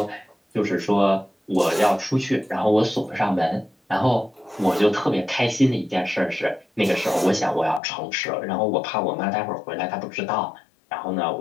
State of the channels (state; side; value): drops out; right; at 7.8 s